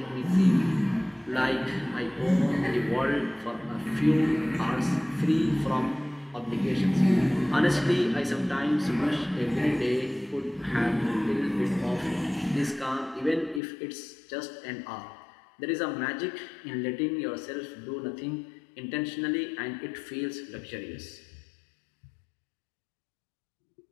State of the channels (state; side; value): drops out; right; at 13.6 s